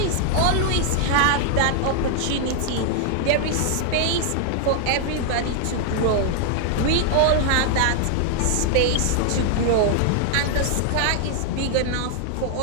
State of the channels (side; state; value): both; different; correlation 0.00